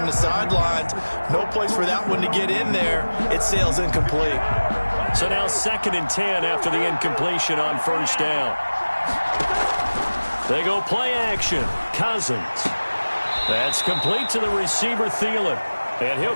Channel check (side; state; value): both; inverted; correlation -1.00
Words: the sidelines. No place for that one to get in there. It sails incomplete. So now 2nd and 10 after the incompletion on 1st down. They go play action. Cousins. That's complete to the receiver, Thielen. And